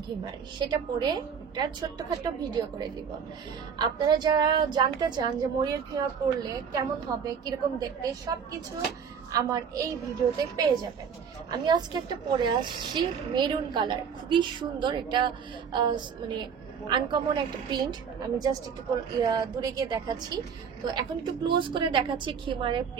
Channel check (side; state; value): left; quieter; 6.9 dB